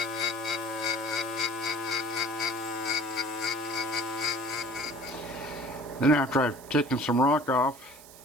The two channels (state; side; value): noise; right; hiss, 19 dB below the sound